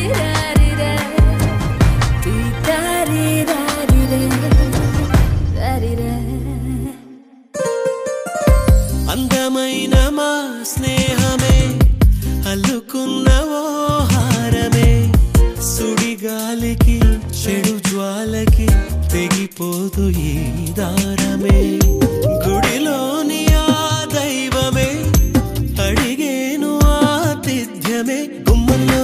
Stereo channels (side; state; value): both; identical; correlation 1.00